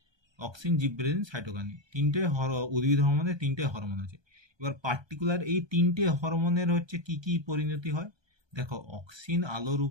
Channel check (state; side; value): late; left; 1.2 ms